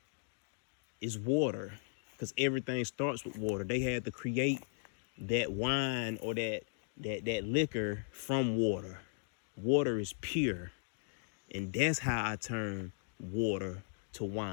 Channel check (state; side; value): silent; right; digital silence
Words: is water, because everything starts with water. They had to create that wine or that liquor from water. Water is pure, and that's how I turn water to